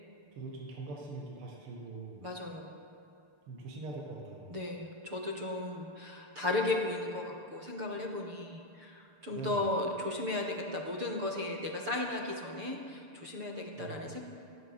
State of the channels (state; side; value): late; left; 6.8 ms